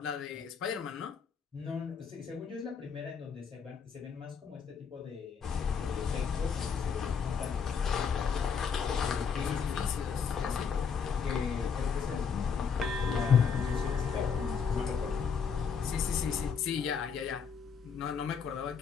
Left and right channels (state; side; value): quieter; right; 6.3 dB